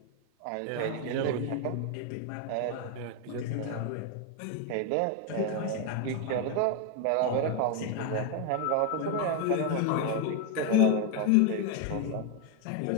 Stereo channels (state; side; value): different; both; correlation 0.01